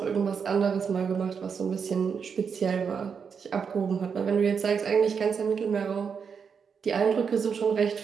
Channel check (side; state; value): left; quieter; 6.3 dB